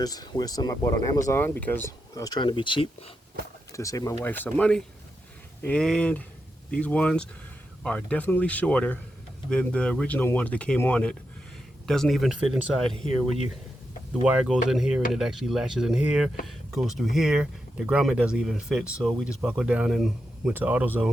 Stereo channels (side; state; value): both; normal; correlation 0.86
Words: with some I bought on Amazon because I was trying to be cheap to save my wife some money. And these ones are definitely shorter than the original ones that came on it. Doesn't even fit inside here where the wire goes in here and it actually latches in here, goes through here. The grommet doesn't even fit, so we just buckled down and went to